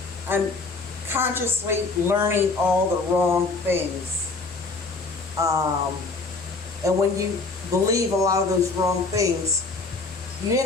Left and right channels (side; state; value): right; quieter; 3.8 dB